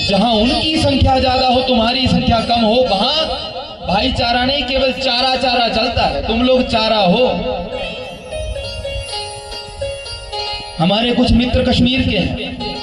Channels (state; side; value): identical; both; correlation 1.00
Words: जहां उनकी संख्या ज्यादा हो, तुम्हारी संख्या कम हो, वहां भाईचारा नहीं, केवल चारा चारा चलता है। तुम लोग चारा हो। हमारे कुछ मित्र कश्मीर के हैं,